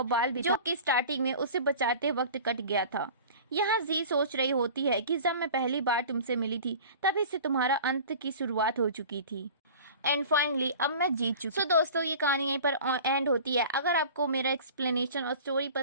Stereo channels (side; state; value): both; inverted; correlation -0.40